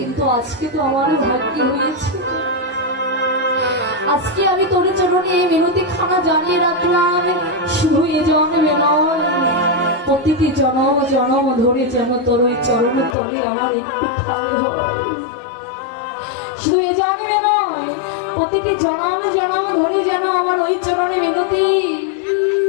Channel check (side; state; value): right; drops out; at 13.2 s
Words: আজকে তো আমারও ভাগ্যে হয়েছে আজকে আমি তোর চরণে এই মিনতি খানা জানিয়ে রাখলাম শুধু এ জন্মে নয় প্রতিটি জনম জনম ধরে যেন তোর ওই চরণ তলে আমার একটু ঠাই হয় শুধু এই জন্মে নয় প্রতিটি জনম জনম ধরে যেন আমার ওই চরণে মিনতি